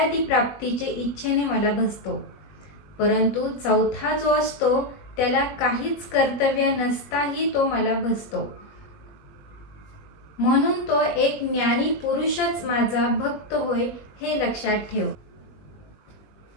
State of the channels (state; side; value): late; right; 21 ms